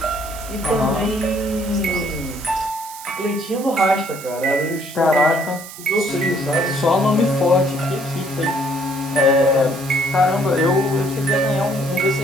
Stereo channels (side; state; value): right; noise; hiss, 14 dB below the sound